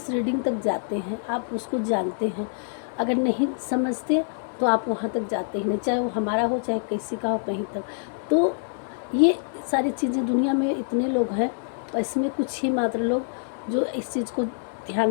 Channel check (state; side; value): silent; right; digital silence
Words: रीडिंग तक जाते हैं, आप उसको जानते हैं। अगर नहीं समझते तो आप वहाँ तक जाते ही नहीं, चाहे वो हमारा हो चाहे किसी का हो, कहीं तक। तो ये सारी चीज़ें दुनिया में इतने लोग हैं और इसमें कुछ ही मात्र लोग जो इस चीज़ को ध्यान